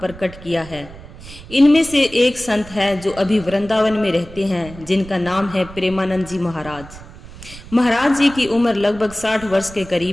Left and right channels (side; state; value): right; noise; rumble, 17 dB below the sound